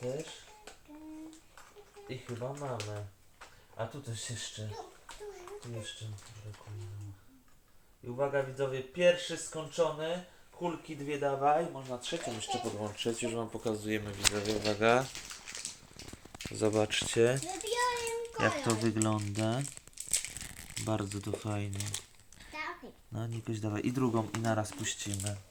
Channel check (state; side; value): identical; both; correlation 1.00